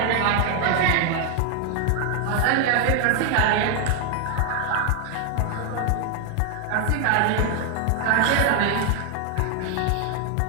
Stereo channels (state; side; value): different; both; correlation 0.00